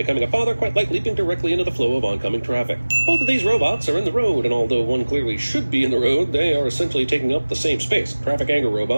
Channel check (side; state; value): both; inverted; correlation -1.00